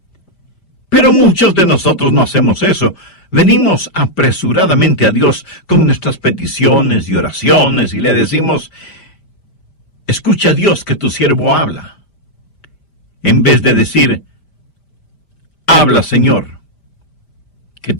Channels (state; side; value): late; right; 5.0 ms